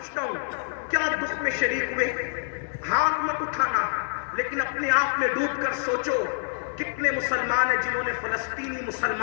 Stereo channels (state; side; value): silent; right; digital silence